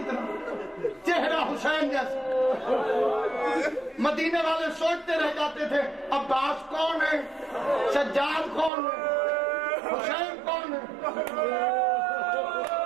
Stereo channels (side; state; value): left; drops out; at 8.7 s